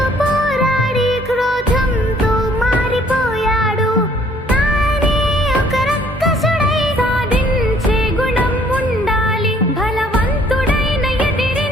పోరాడి క్రోధంతో మారిపోయాడు. తానే ఒక రక్కసుడై సాధించే గుణం ఉండాలి, బలవంతుడైన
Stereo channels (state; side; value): normal; both; correlation 0.61